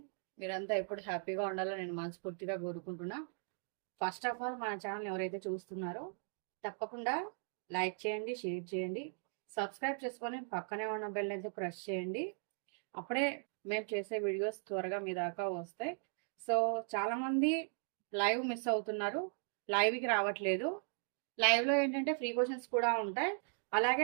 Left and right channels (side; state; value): left; silent; 52 dB below the other